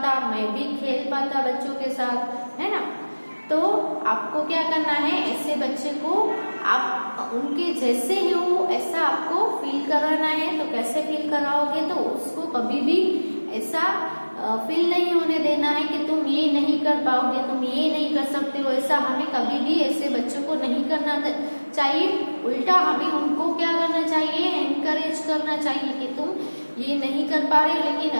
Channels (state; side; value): inverted; both; correlation -1.00